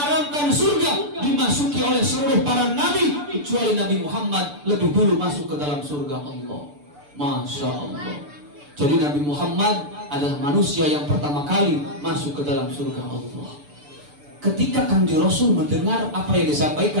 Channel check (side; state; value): left; late; 6.8 ms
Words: surga dimasuki oleh seluruh para nabi kecuali Nabi Muhammad lebih dulu masuk ke dalam surga Allah. Masya Allah. Jadi Nabi Muhammad adalah manusia yang pertama kali masuk ke dalam surga Allah. Ketika Kangjeng Rasul mendengar apa yang